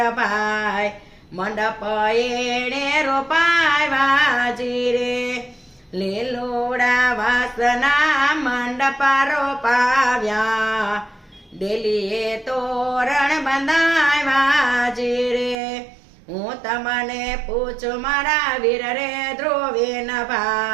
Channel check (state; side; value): drops out; left; at 15.6 s